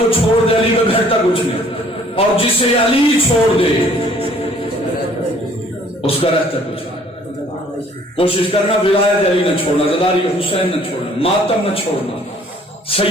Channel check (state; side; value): normal; both; correlation 0.57